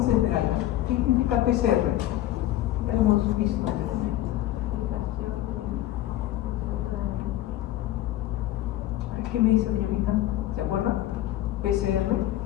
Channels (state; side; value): quieter; right; 14.1 dB